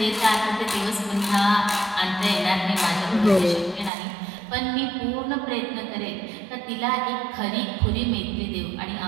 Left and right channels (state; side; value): drops out; left; at 3.9 s